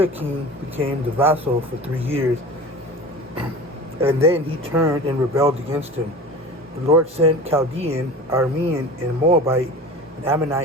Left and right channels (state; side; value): normal; both; correlation 0.36